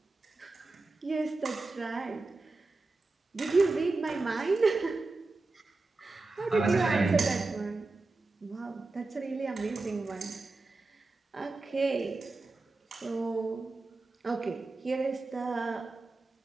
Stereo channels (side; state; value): left; quieter; 3.4 dB